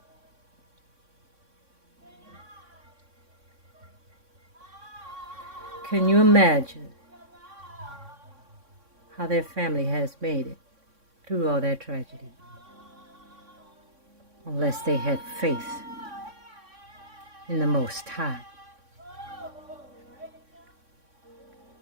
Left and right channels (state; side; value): late; left; 3.6 ms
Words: Can you imagine how their family has made it through all that tragedy? Unless they had faith in the Most High.